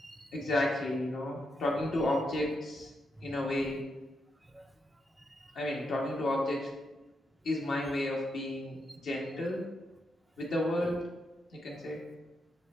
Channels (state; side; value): normal; both; correlation 0.82